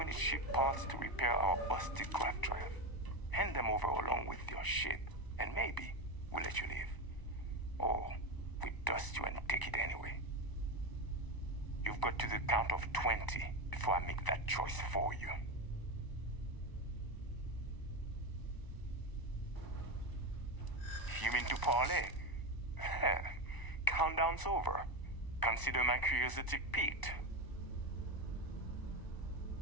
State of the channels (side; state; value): right; late; 1.0 ms